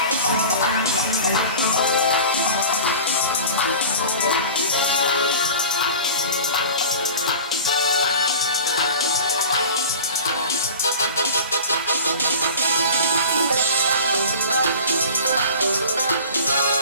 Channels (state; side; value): inverted; both; correlation -0.37